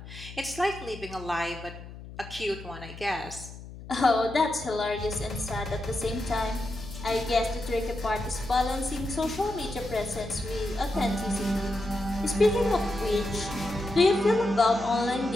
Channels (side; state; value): left; noise; hum, 14 dB below the sound